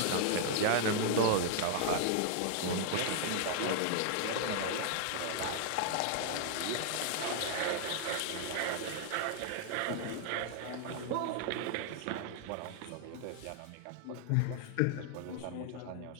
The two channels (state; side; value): different; both; correlation -0.01